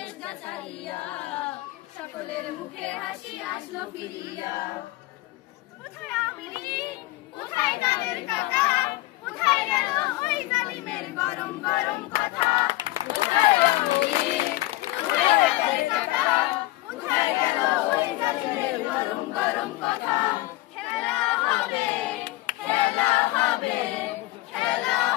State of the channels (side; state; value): right; quieter; 18.5 dB